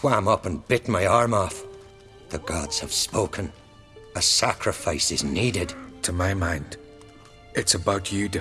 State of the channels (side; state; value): both; identical; correlation 1.00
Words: up and bit my arm off. The gods have spoken. A sacrifice is needed. To my mind, it's about you